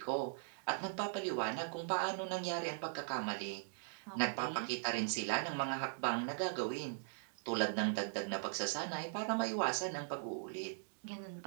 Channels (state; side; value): silent; left; digital silence